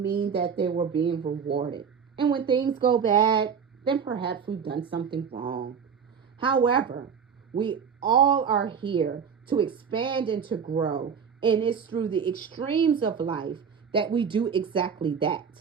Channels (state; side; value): quieter; left; 6.8 dB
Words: that they were being rewarded. And when things go bad, then perhaps we've done something wrong. However, we all are here to expand and to grow, and it's through the extremes of life that we do exactly that.